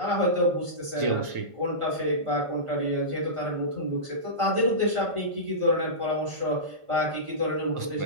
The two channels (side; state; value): left; late; 1.5 ms